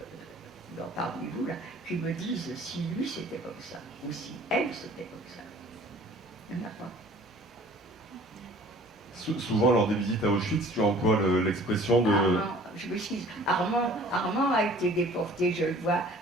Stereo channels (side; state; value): both; normal; correlation 0.50